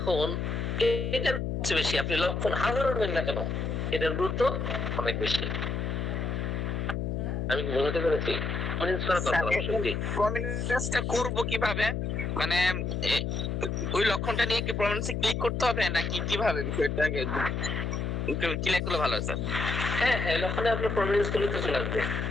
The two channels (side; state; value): left; noise; hum, 1 dB below the sound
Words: এটার বেশি আপনি লক্ষণ হাজারো নেন না কেন, এটার গুরুত্ব অনেক বেশি। আমি বুঝতে পেরেছি। প্রমিনেন্সটা করব কিভাবে, মানে ওই লক্ষণটা নিয়ে কি প্রমিনেন্সে ক্লিক করতে হবে নাকি কিভাবে বিষয়টা ক্লিক করলে ভালো হয় স্যার? হ্যাঁ, লক্ষণে আপনার প্রমিনেন্স করলে তো চলে আসবে।